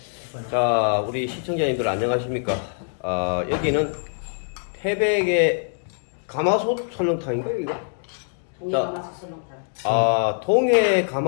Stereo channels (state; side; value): silent; right; digital silence